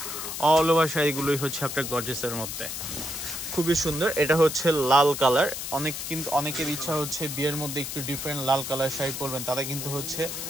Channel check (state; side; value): noise; left; hiss, 6 dB below the sound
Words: অল ওভার শাড়িগুলোই হচ্ছে আপনার গর্জিয়াসের মধ্যে খুবই সুন্দর। এটা হচ্ছে লাল কালার। অনেকের ইচ্ছা হচ্ছে বিয়ের মধ্যে একটু ডিফারেন্ট লাল কালার শাড়ি পরবেন, তারা কিন্তু হচ্ছে